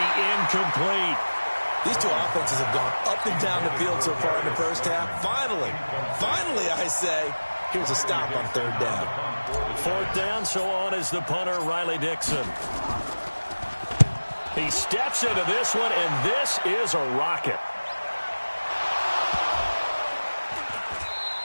incomplete. These two offenses have gone up and down the field so far in the first half. Finally, I say, here's a stop on 3rd down. 4th down, so on is the punter, Riley Dixon. He steps into this one, and this is a rocket.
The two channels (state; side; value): inverted; both; correlation -1.00